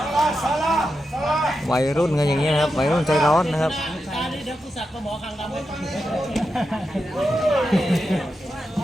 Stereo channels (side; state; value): both; normal; correlation 0.88